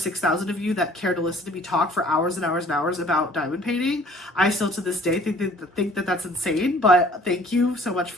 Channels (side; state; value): both; normal; correlation 0.54